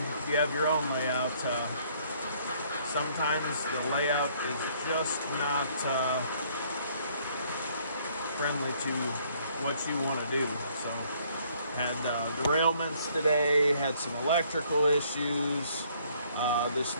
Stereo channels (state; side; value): inverted; both; correlation -0.64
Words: if you have your own layout, sometimes the layout is just not friendly to what you want to do. So, had derailments today, had some electrical issues. This